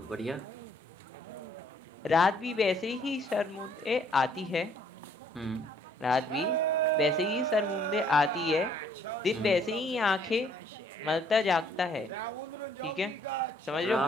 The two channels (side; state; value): both; normal; correlation 0.63